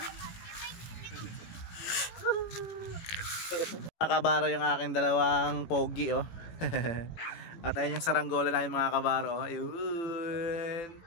Mga kabaro, yung aking dalawang pogi oh. At ayun yung saranggola na yung mga kabaro oh. Ayun,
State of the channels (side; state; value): right; late; 18 ms